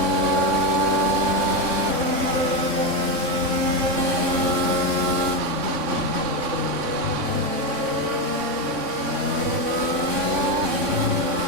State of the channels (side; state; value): left; late; 3.6 ms